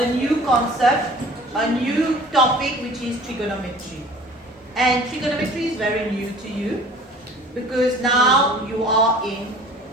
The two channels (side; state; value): both; normal; correlation 0.46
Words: new concept, a new topic, which is trigonometry. And trigonometry is very new to you because now you are in